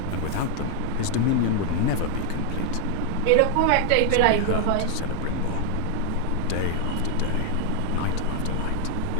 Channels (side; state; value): both; different; correlation 0.00